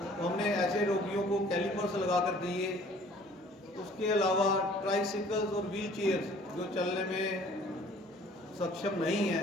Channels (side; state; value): both; normal; correlation 0.53